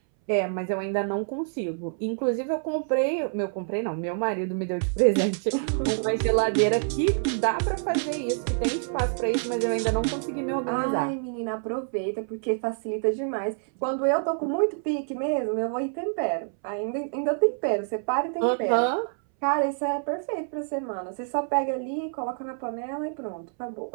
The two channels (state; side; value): silent; left; 60 dB below the other